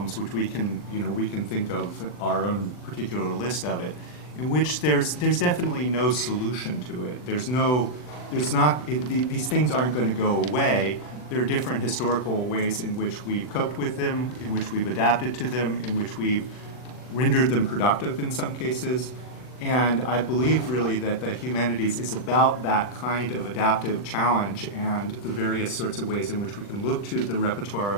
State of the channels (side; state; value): right; late; 40 ms